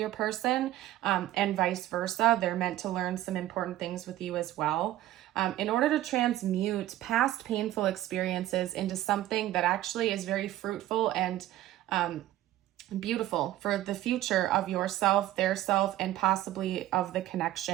person, and vice versa. They're meant to learn some important things with you as well. In order to transmute past painful experiences into something that actually is very fruitful and beautiful for the future of yourself, their self, and possibly of the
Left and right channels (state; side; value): quieter; left; 14.2 dB